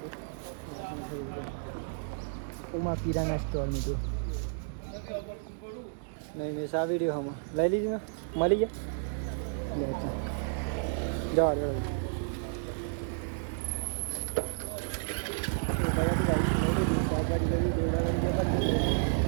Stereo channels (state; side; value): silent; left; digital silence